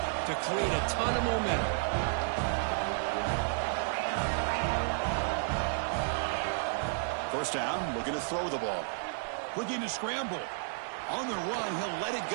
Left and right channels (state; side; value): silent; left; 56 dB below the other